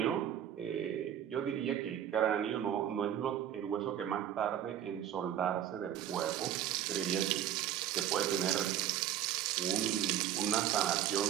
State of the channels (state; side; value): quieter; left; 10.6 dB